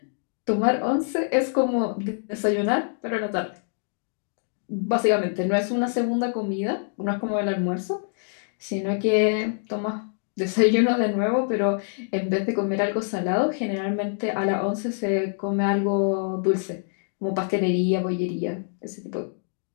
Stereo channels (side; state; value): right; silent; digital silence